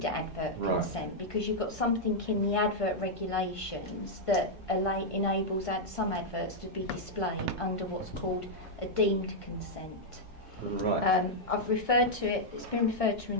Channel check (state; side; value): normal; both; correlation -0.04